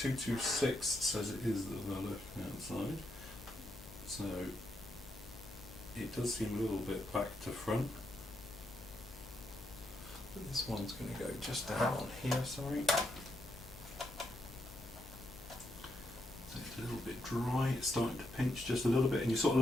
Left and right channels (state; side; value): noise; left; hum, 17 dB below the sound